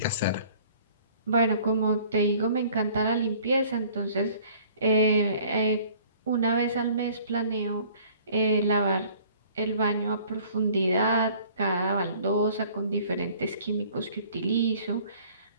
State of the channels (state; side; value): inverted; both; correlation -0.53